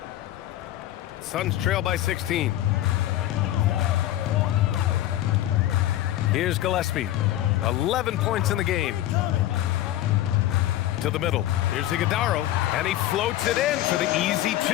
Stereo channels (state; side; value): quieter; right; 13.9 dB